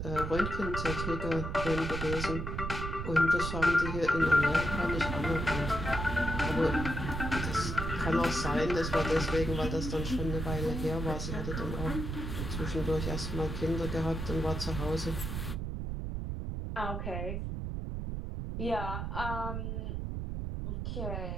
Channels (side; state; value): right; noise; rumble, 3 dB below the sound